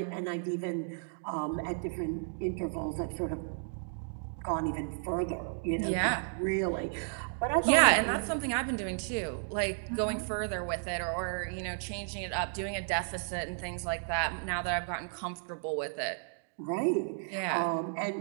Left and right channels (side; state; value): left; silent; 56 dB below the other